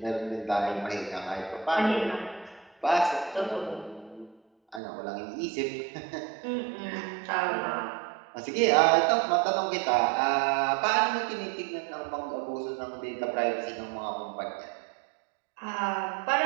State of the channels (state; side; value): drops out; left; at 4.8 s